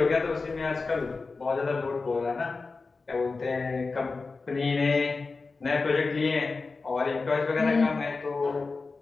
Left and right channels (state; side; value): quieter; right; 4.1 dB